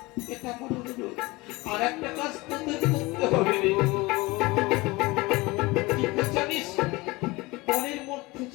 এটা আমার অনুরোধ, আর একটা কাজ তোদের করতে হবে। জানিস মনের মধ্যে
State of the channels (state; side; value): quieter; right; 22.5 dB